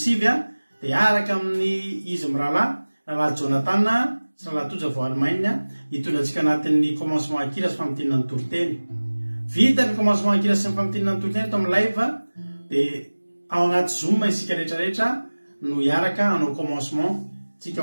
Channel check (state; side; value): inverted; both; correlation -1.00